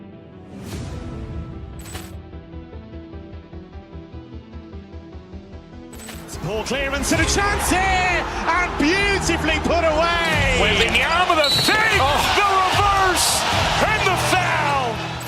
Ball clearance and a chance here, and beautifully put away. Wembanyama the fake, the reverse, and the foul.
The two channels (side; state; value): both; identical; correlation 1.00